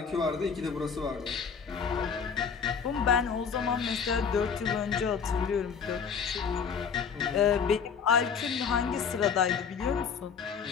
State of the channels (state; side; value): quieter; right; 6.4 dB